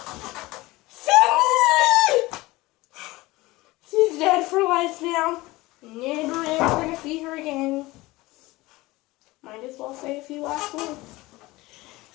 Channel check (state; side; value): quieter; right; 20.2 dB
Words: Sydney! She's dead for life now. Never ever gonna see her again. Might as well say a few last words.